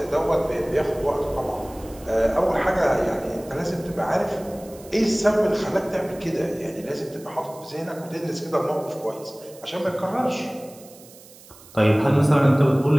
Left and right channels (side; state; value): right; noise; hiss, 22 dB below the sound